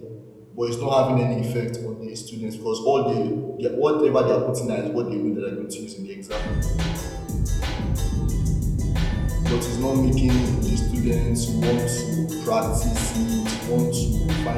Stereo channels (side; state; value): both; identical; correlation 1.00